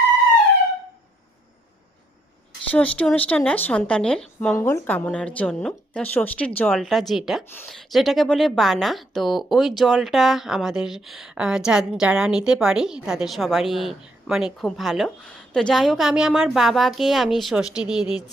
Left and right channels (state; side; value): normal; both; correlation 0.73